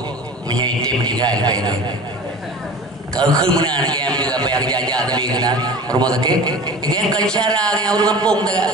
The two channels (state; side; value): normal; both; correlation 0.38